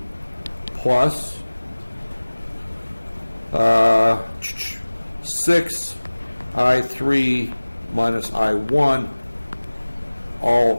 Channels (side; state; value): both; inverted; correlation -1.00